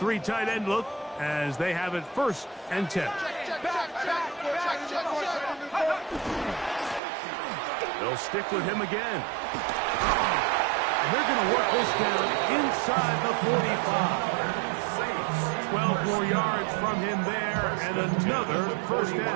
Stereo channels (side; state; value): left; drops out; at 7.0 s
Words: tight end look as they have it first and 10. They'll stick with him again. And they're going to work this down inside the 45. 12 more yards from him there and another first